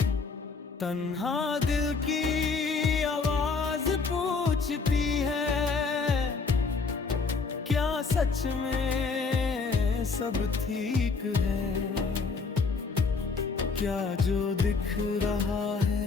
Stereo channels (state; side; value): quieter; right; 4.6 dB